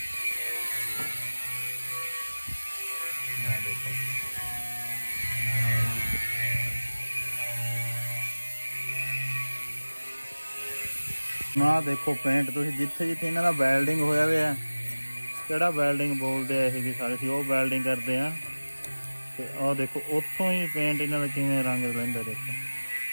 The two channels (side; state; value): both; inverted; correlation -1.00